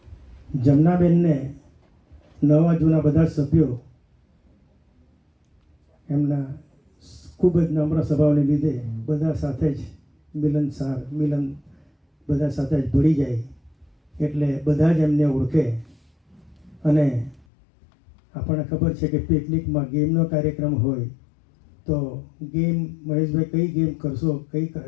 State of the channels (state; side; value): drops out; right; at 17.4 s